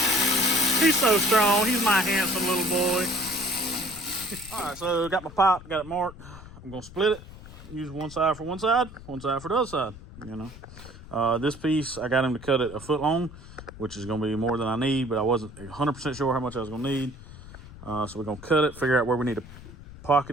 He's so strong. He's my handsome little boy. All right, so got my pipe, got it marked. I'm gonna split it. Use one side for one side for the other side. This piece I got him to cut it a foot long, which is gonna be more than I need, but I wasn't 100% sure how much I was gonna need. So we're gonna cut it, figure out where we need to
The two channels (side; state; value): left; noise; rumble, 16 dB below the sound